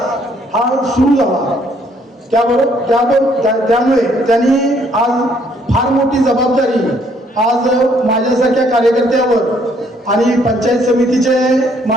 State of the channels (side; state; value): both; normal; correlation 0.66